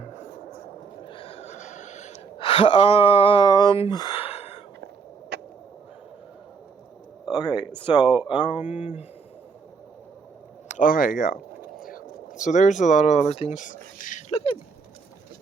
Okay, so okay, yeah. So there's a lot of other things. Look at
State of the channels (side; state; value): left; quieter; 5.2 dB